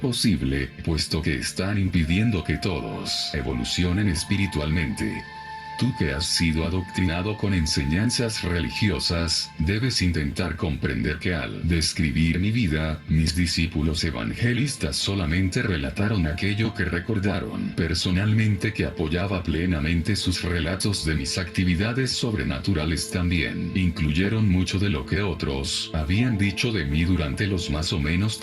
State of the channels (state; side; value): identical; both; correlation 1.00